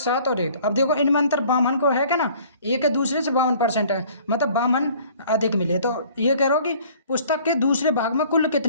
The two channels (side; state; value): both; inverted; correlation -0.53